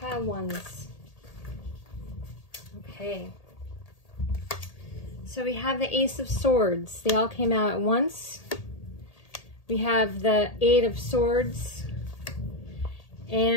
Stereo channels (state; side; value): late; right; 1.8 ms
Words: ones. Okay. So we have the Ace of Swords. They all came out at once. We have the Eight of Swords